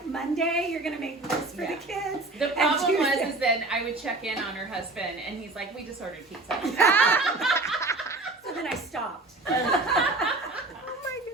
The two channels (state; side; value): quieter; left; 3.0 dB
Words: Monday, you're gonna make this for the kids. The problem is then I would check in on her husband and he's like, we just ordered pizza. So then I stopped. Oh my